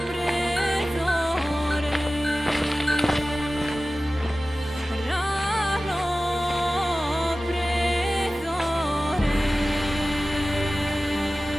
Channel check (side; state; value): both; normal; correlation 0.96